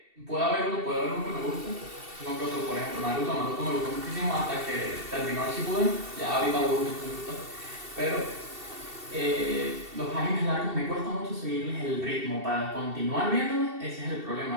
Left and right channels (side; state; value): left; late; 2.7 ms